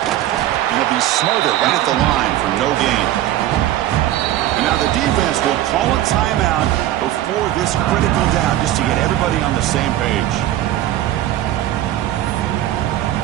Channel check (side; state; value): left; quieter; 13.5 dB